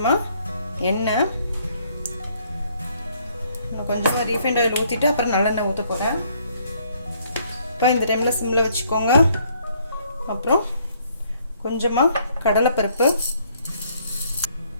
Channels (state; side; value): inverted; both; correlation -0.66